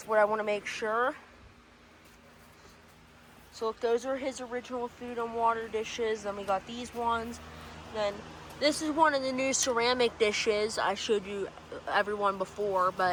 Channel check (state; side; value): identical; both; correlation 1.00